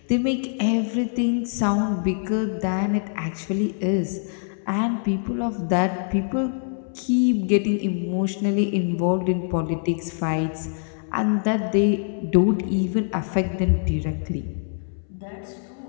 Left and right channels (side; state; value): right; silent; 62 dB below the other